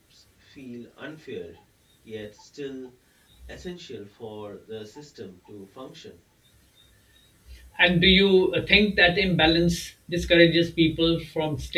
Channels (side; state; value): both; identical; correlation 1.00